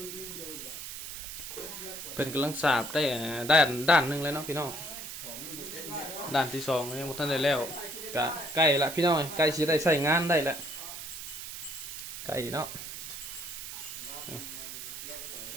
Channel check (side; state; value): right; noise; hiss, 8 dB below the sound